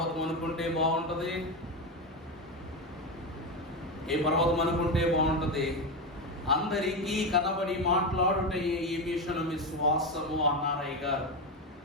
అనుకుంటే బాగుంటది? ఏ పర్వతం అనుకుంటే బాగుంటది? అందరికీ కనబడి మాట్లాడుటే ఈ మిషన్ విశ్వాసము అన్నారు అయ్యగారు.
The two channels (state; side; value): normal; both; correlation 0.14